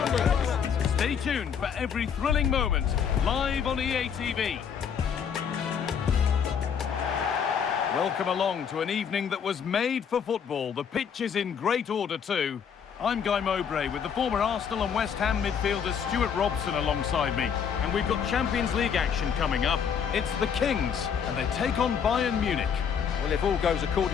Stay tuned for every thrilling moment, live on EA TV. Welcome along to an evening that was made for football. The pitch is in great order too. I'm Guy Mowbray with the former Arsenal and West Ham midfielder Stuart Robson alongside me. And we've got Champions League action coming up. It's the Kings, and they take on Bayern Munich. Well, if all goes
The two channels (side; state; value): right; quieter; 7.4 dB